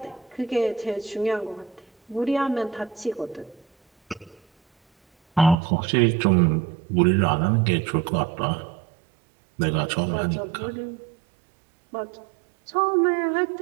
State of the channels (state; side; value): drops out; left; at 5.6 s